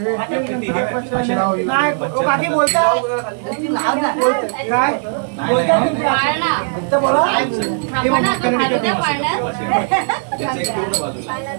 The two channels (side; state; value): left; silent; digital silence